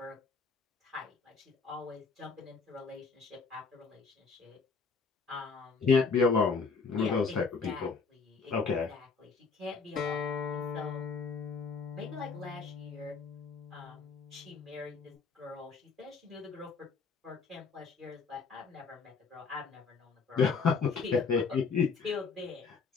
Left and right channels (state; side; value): quieter; right; 5.0 dB